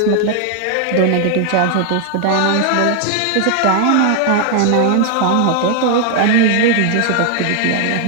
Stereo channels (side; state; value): both; different; correlation 0.00